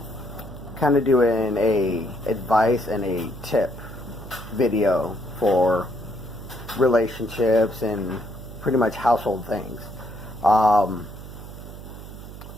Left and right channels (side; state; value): right; noise; hum, 13 dB below the sound